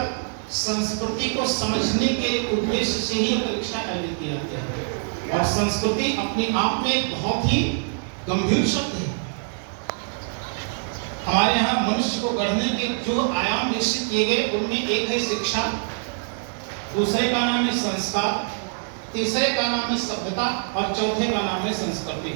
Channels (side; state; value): left; silent; digital silence